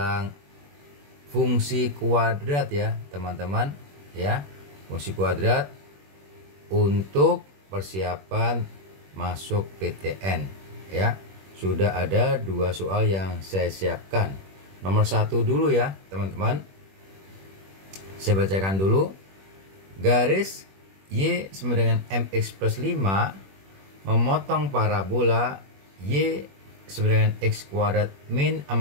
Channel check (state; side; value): late; left; 21 ms